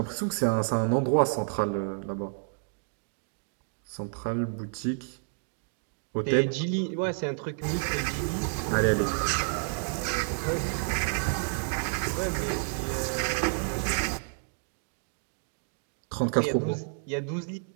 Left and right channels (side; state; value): left; silent; digital silence